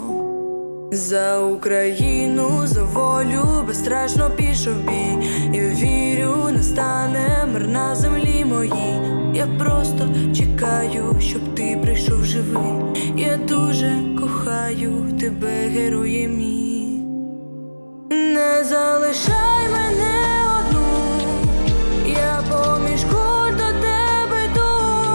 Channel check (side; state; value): both; inverted; correlation -1.00